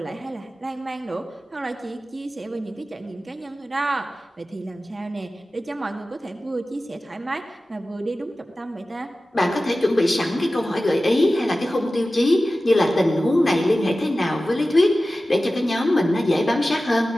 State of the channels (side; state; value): both; normal; correlation 0.95